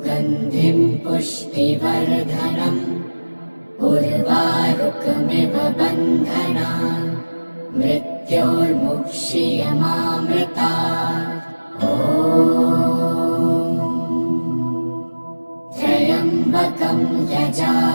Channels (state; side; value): inverted; both; correlation -1.00